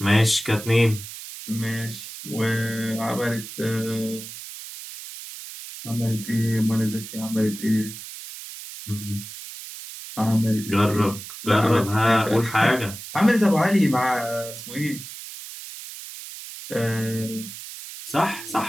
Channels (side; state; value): right; noise; hiss, 12 dB below the sound